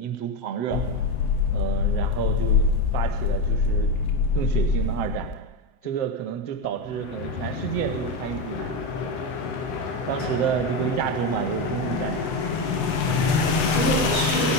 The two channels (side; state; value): right; late; 7.9 ms